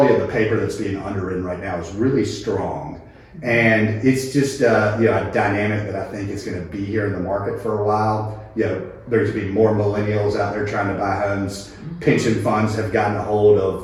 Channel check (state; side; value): identical; both; correlation 1.00